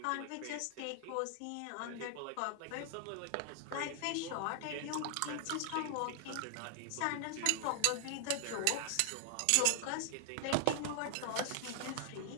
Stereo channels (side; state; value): both; different; correlation 0.00